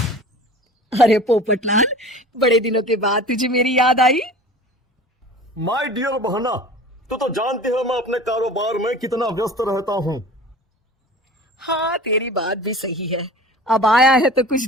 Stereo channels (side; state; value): both; normal; correlation 0.40